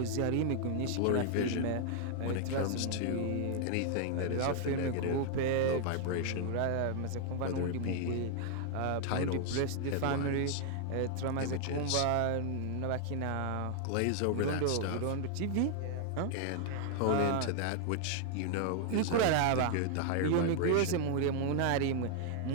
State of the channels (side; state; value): both; different; correlation 0.00